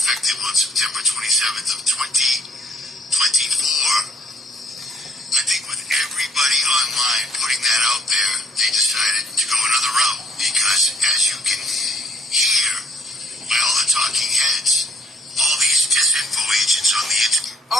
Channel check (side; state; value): both; normal; correlation 0.65